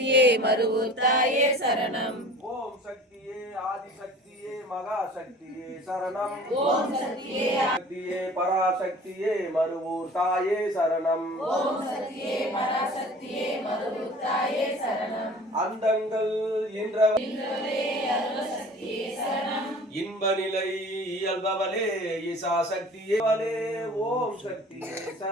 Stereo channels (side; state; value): both; normal; correlation 0.44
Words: மருவூர் தாயே சரணம். ஓம் சக்தியே ஆதிசக்தியே மகாசக்தியே சரணம். ஓம் சக்தியே சக்தியே பராசக்தியே மருவூர் தாயே சரணம். ஓம் சக்தியே பராசக்தியே மருவூர் தாயே சரணம். அண்டங்கள் இன்றவளே அருளசக்தியே சரணம். இன்ப நிலை இயல்பவளே ஈசா சக்தியே ஓம் சக்தியே